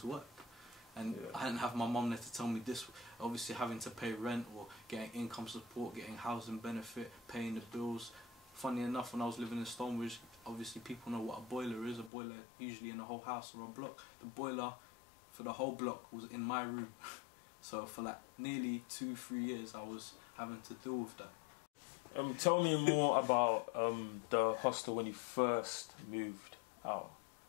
work. And I didn't have my mum there to tell me this. Obviously, having to pay rent or getting income support, getting housing benefit, paying the bills. Funny enough, when I was living in Stonebridge, obviously people know what a boiler is. A boiler usually in a whole house or a block. The boiler for the whole block was in my room. So for like nearly 2-3 years, I was having to deal with that. Tell me more about the hostel when you first moved out.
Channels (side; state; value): right; drops out; at 12.1 s